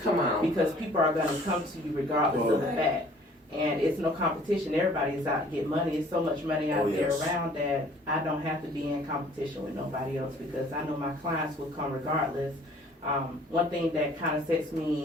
Come on. Because people are going to come to you regardless of the fact. And it's no competition. Everybody is out to get money. It's so much money out there around that I don't have to be in competition with nobody else, because I know my clients will come regardless One thing that kind of sets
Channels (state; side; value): normal; both; correlation 0.54